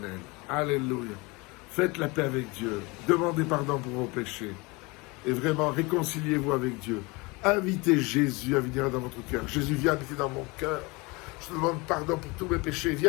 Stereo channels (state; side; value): quieter; right; 25.7 dB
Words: Alléluia. Faites la paix avec Dieu, demandez pardon pour vos péchés, et vraiment réconciliez-vous avec Dieu. Invitez Jésus à venir dans votre cœur. Jésus, viens habiter dans mon cœur. Je te demande pardon pour tous mes péchés.